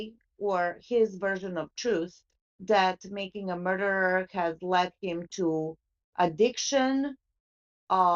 or his version of truth that Making a Murderer has led him to addiction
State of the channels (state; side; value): identical; both; correlation 1.00